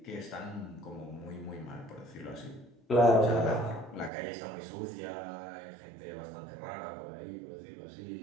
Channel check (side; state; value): left; drops out; at 4.1 s